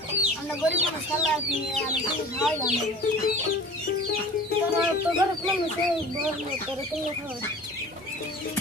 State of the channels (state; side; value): normal; both; correlation 0.42